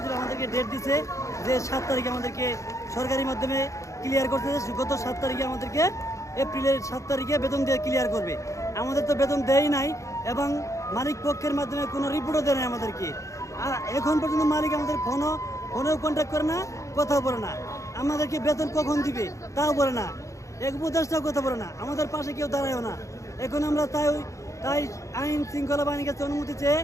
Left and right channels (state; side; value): late; right; 0.15 ms